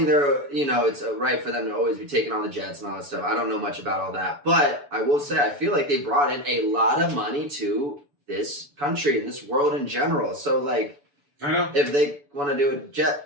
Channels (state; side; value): late; left; 7.0 ms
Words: it's right for them to always be taking on the jets and all that stuff. I don't know much about all that. But I will say, I feel like they brought in a lot of money to this country and this world in general. So, like, I know. If they want to do a